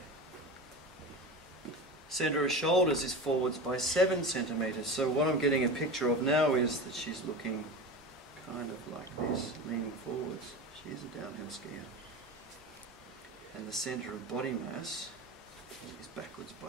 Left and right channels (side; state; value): both; normal; correlation 0.28